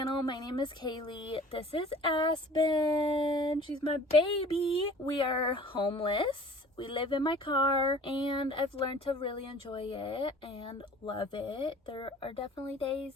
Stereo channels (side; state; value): both; normal; correlation 0.47